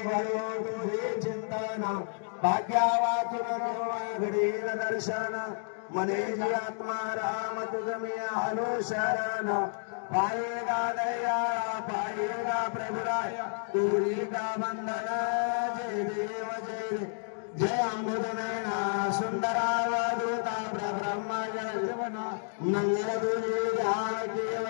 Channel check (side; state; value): right; silent; digital silence